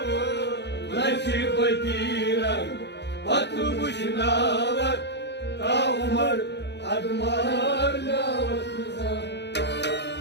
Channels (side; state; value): right; late; 0.50 ms